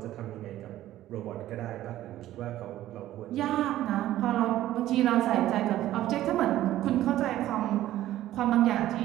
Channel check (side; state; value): left; quieter; 13.9 dB